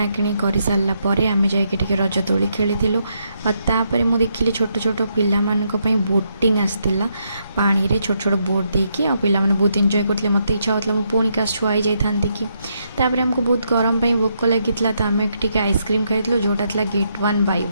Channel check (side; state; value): both; inverted; correlation -0.78